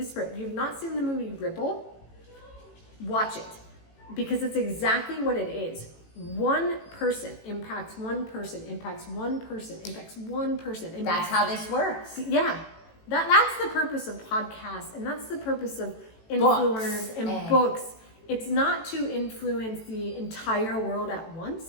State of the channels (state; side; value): late; right; 18 ms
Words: you have not seen the movie Ripple, watch it, because it's exactly what it is. One person impacts one person, impacts one person, impacts one person. That's how this works. Yeah. That's the purpose of podcasts, and that's the purpose of influencers and books. It's not to influence the entire world at